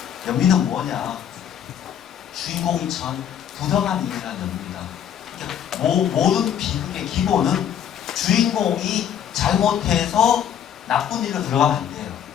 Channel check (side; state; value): right; quieter; 9.3 dB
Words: 연민은 뭐냐? 주인공이 처한 부당한 일이라는 연민이다. 그러니까 모든 비극의 기본은 주인공이 잘못해서 나쁜 일로 들어가면 안 돼요.